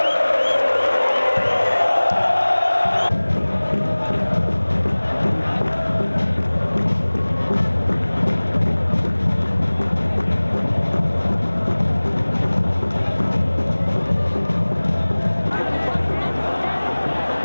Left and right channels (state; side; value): inverted; both; correlation -1.00